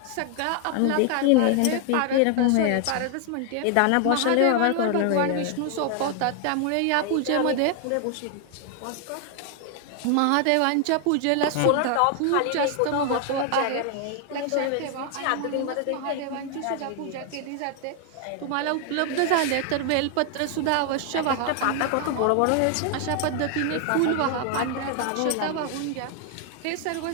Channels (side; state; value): both; different; correlation 0.00